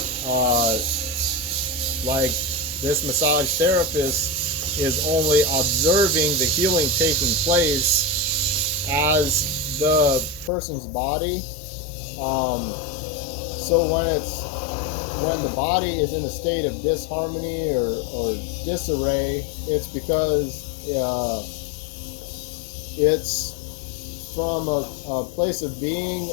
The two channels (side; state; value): right; drops out; at 10.5 s